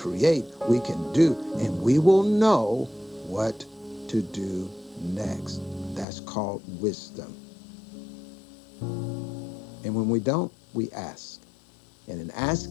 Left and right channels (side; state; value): right; drops out; at 6.1 s